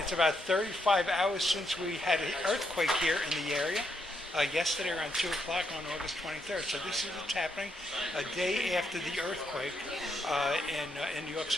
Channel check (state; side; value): normal; both; correlation 0.78